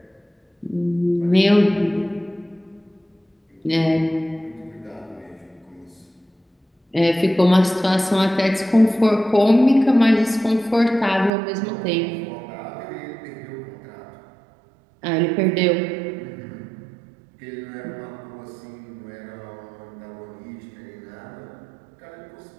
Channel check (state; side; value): drops out; left; at 11.3 s